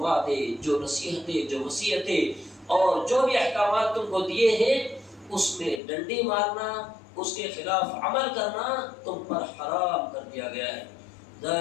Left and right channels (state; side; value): drops out; right; at 5.8 s